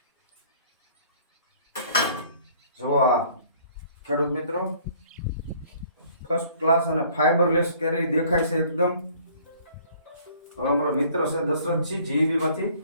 જો આ ખેડૂત મિત્રો ફર્સ્ટ ક્લાસ અને ફાઈબરલેસ કેરી દેખાય છે એકદમ. હવે અમારો મિત્ર છે દશરથજી જીબી માંથી,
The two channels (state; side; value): inverted; both; correlation -0.56